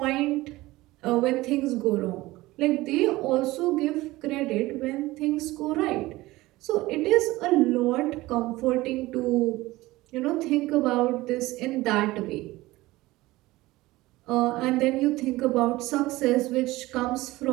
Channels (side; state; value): left; quieter; 18.9 dB